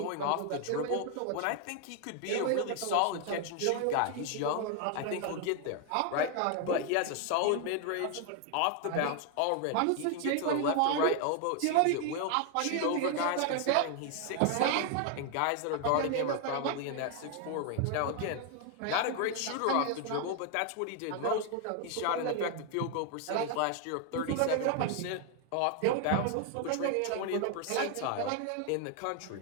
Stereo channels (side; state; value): both; different; correlation 0.00